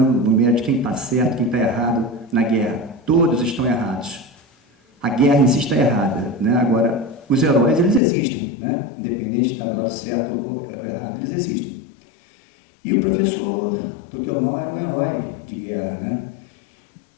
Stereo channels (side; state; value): right; drops out; at 8.0 s